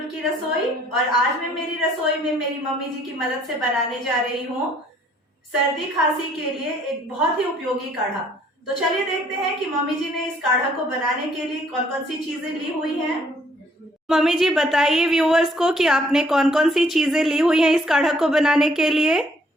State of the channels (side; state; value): both; normal; correlation 0.63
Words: की रसोई। और आज मैं मेरी रसोई में मेरी मम्मी जी की मदद से बनाने जा रही हूँ सर्दी खांसी के लिए एक बहुत ही उपयोगी काढ़ा। तो चलिए देखते हैं कि मम्मी जी ने इस काढ़ा को बनाने के लिए कौन कौन सी चीजें ली हुई हैं। मम्मी जी बताइए व्यूअर्स को कि आपने कौन कौन सी चीजें ली हुई हैं इस काढ़ा को बनाने के लिए।